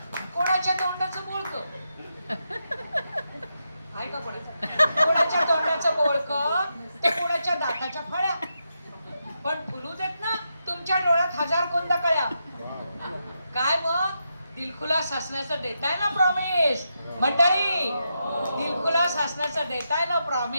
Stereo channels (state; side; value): inverted; both; correlation -0.85